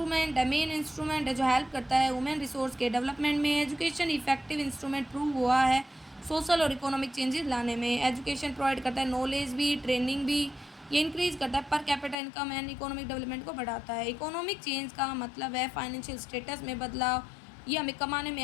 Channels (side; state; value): right; drops out; at 12.2 s